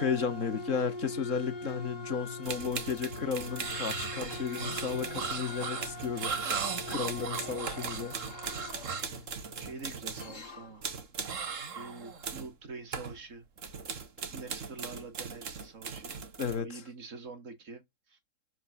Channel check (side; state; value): left; late; 3.7 ms